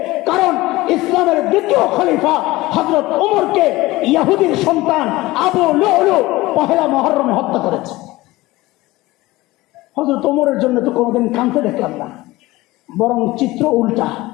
কারণ ইসলামের দ্বিতীয় খলিফা হযরত ওমরকে ইহুদির সন্তান আবু লুলু পহেলা মুহররমে হত্যা করেছে। হযরত ওমরের জন্য তো কোনোদিন কাঁদতে দেখলাম না, বরং চিত্র উল্টা,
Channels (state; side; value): quieter; right; 19.2 dB